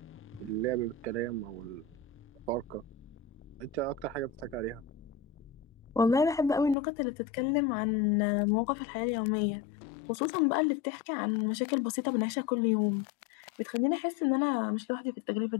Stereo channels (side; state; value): right; drops out; at 6.8 s